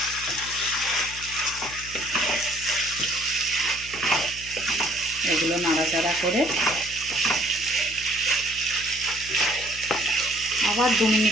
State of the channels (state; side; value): noise; left; hum, 16 dB below the sound